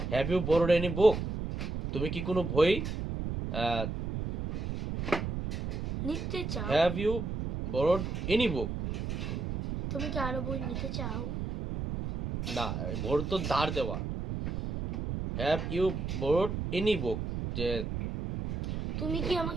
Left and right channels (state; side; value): noise; right; rumble, 3 dB below the sound